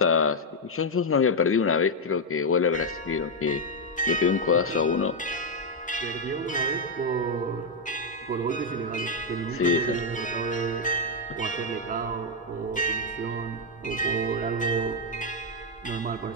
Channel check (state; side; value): normal; both; correlation 0.01